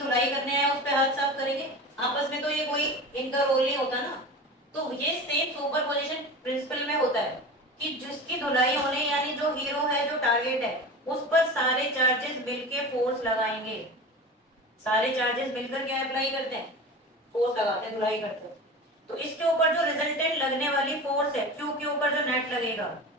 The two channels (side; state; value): both; normal; correlation 0.31